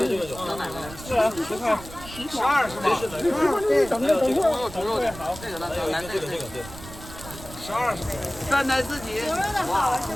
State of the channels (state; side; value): noise; right; rumble, 15 dB below the sound